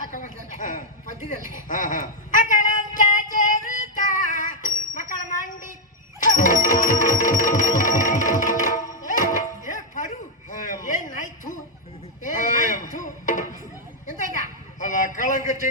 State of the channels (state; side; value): normal; both; correlation -0.01